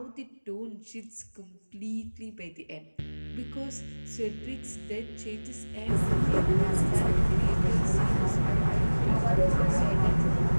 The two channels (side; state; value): both; inverted; correlation -1.00